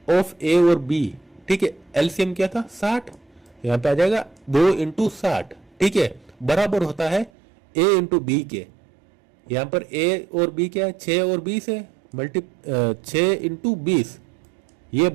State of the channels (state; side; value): drops out; left; at 7.3 s